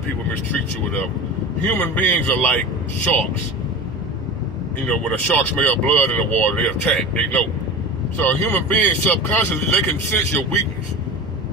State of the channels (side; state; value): both; normal; correlation 0.31